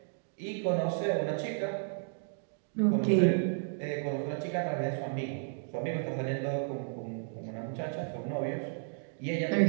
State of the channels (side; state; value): left; silent; digital silence